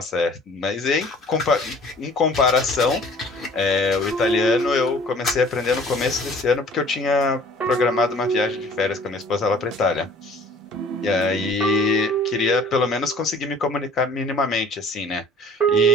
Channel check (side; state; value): both; normal; correlation 0.51